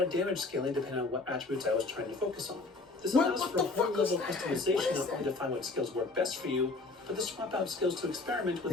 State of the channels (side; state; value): right; quieter; 3.5 dB